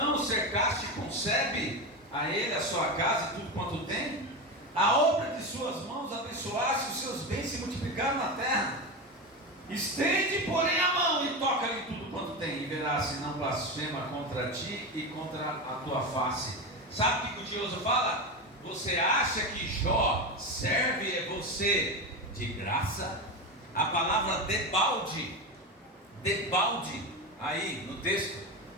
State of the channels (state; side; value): normal; both; correlation 0.19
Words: o cercaste com sebe, a ele, a sua casa e tudo quanto tem? A obra de suas mãos abençoaste, os seus bens se multiplicaram na terra. Estende, porém, a mão e toca-lhe tudo quanto tem, e verás se não blasfema contra ti e contra a tua face. Sabe o que o tinhoso fala? Você acha que Jó serve você de graça? A palavra debalde, aí no texto.